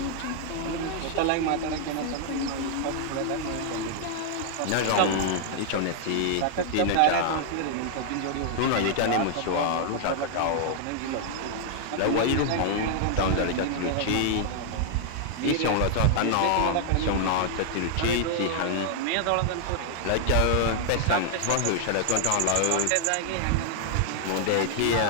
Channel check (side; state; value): both; different; correlation 0.00